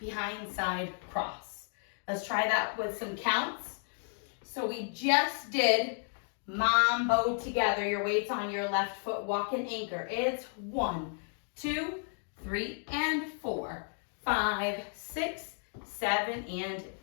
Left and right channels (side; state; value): right; silent; 56 dB below the other